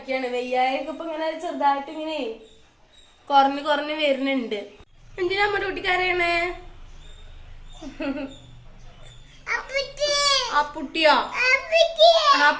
വെയ്യായൊക്കെ ഇപ്പൊ ഇങ്ങനെ ചെറുതായിട്ട് ഇങ്ങനെ കുറഞ്ഞ് വരുന്നുണ്ട്. എന്തിനാ നമ്മുടെ കുട്ടിക്കാരെയാണ്? അപ്പുട്ടിയോ?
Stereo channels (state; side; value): identical; both; correlation 1.00